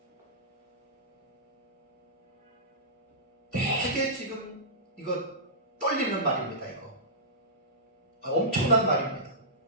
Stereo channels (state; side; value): normal; both; correlation -0.19